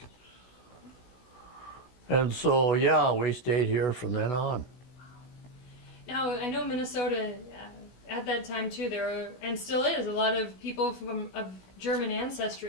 And so, yeah, we stayed here from then on. Now, I know Minnesota, at that time too, there were, and still is, a lot of people of German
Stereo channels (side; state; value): right; late; 16 ms